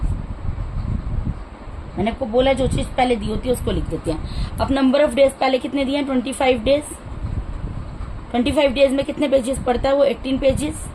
मैंने आपको बोला जो चीज पहले दी होती है उसको लिख देते हैं। अब नंबर ऑफ डेज पहले कितने दिए हैं, 25 डेज। 25 डेज में कितने पेजेस पढ़ता है वो, 18 पेजेस।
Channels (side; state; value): both; identical; correlation 1.00